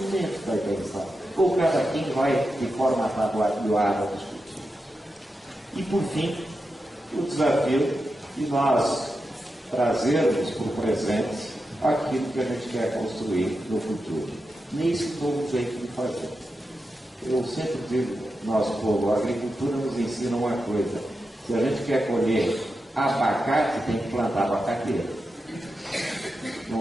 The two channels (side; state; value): both; normal; correlation 0.89